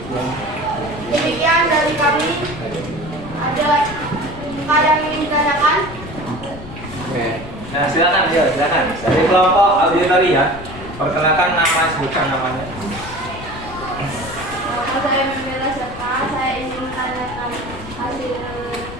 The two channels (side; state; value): left; noise; rumble, 13 dB below the sound